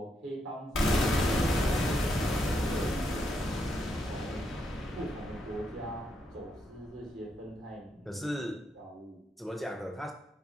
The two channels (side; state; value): both; normal; correlation 0.79